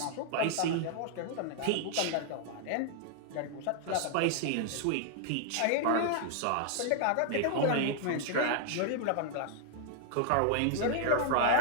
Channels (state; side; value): different; both; correlation 0.00